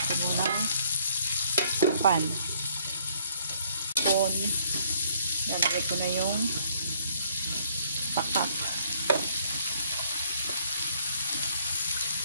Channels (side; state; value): both; inverted; correlation -0.64